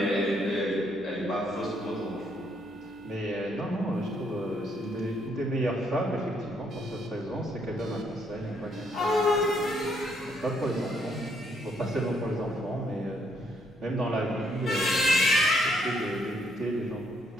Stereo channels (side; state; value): left; noise; hum, 29 dB below the sound